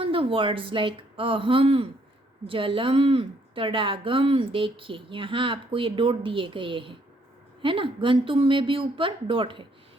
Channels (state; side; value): normal; both; correlation 0.68